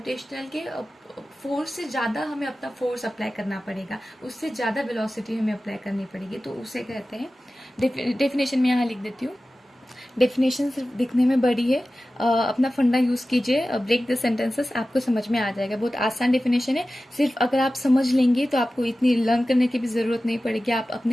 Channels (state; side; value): normal; both; correlation 0.95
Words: के फोर्स से ज्यादा हमें अपना फोर्स अप्लाई करना पड़ेगा, उससे ज्यादा वेलोसिटी हमें अप्लाई करनी पड़ेगी, तो उसे कहते हैं। डेफिनेशन में यहाँ लिख देती हूँ। डेफिनेशन सिर्फ दिखने में बड़ी है, अपना फंडा यूज कीजिए, ब्रेक द सेंटेंसेस, आपको समझ में आ जाएगा। बहुत आसान डेफिनेशन है, सिर्फ अगर आप समझ लेंगे तो आपको इतनी लर्न करने की भी जरूरत नहीं पड़ेगी, आप